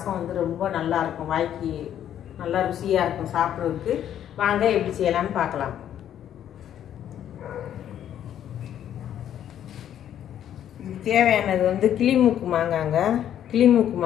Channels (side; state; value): right; quieter; 10.4 dB